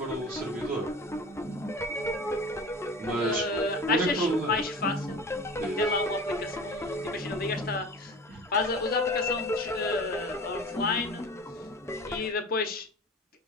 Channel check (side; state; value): both; normal; correlation 0.37